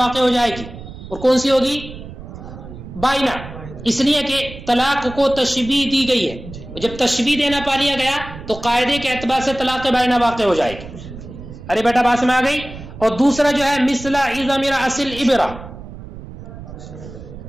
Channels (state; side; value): noise; right; rumble, 13 dB below the sound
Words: ہو جائے گی، اور کون سی ہوگی؟ بائنہ، اس لیے کہ طلاق کو تشبیہ دی گئی ہے، جب تشبیہ دینا پا لیا گیا تو قاعدے کے اعتبار سے طلاق بائنہ واقع ہو جائے گی۔ ارے بیٹا بات میں آ گئی؟ اور دوسرا جو ہے مثل عظم رأس الابرہ،